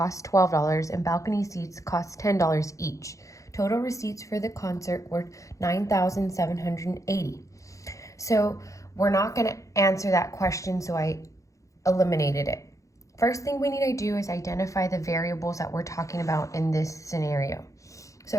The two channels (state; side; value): late; right; 0.15 ms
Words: $12 and balcony seats cost $10 each. Total receipts for the concert were $9,780. So we're not going to answer that question, so I eliminated it. First thing we need to do is identify the variables that we're talking about in this scenario. So